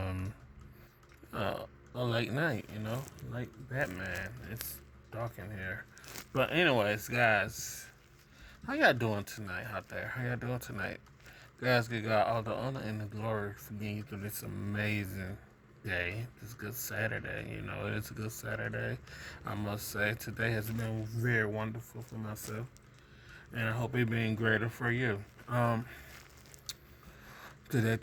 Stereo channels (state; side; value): identical; both; correlation 1.00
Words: late night, like Batman. It's dark in here, but anyways, guys, how y'all doing tonight out there? How y'all doing tonight, guys? Give God all the honor and the glory for getting you through this amazing day. This good Saturday, it's a good Saturday. I must say today has been very wonderful for myself, and I hope it been greater for you. Today.